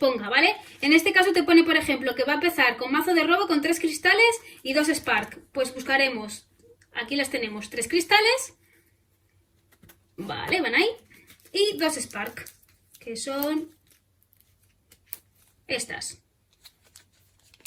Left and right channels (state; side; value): identical; both; correlation 1.00